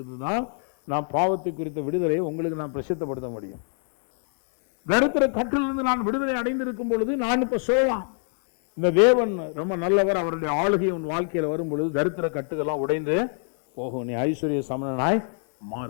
நான் பாவத்தை குறித்த விடுதலையை உங்களுக்கு நான் பிரசித்தப்படுத்த முடியும். தரித்திர கட்டிலிருந்து நான் விடுதலை அடைந்திருக்கும் பொழுது நான் இப்ப சொல்லலாம், இந்த தேவன் ரொம்ப நல்லவர், அவருடைய ஆளுகை உன் வாழ்க்கையில் வரும் பொழுது தரித்திர கட்டுகள்லாம் உடைந்து போகும், நீ ஐஸ்வர்ய சமணனாய்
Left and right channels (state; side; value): silent; right; 57 dB below the other